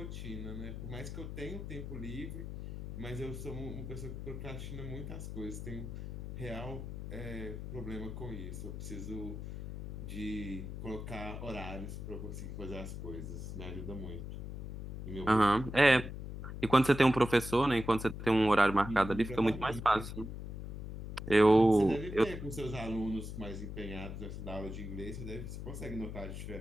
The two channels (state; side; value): noise; left; hum, 7 dB below the sound